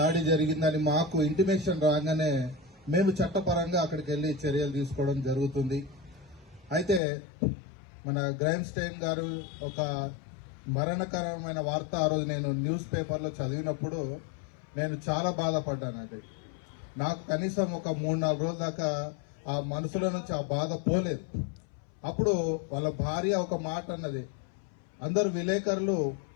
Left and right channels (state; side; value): drops out; right; at 7.0 s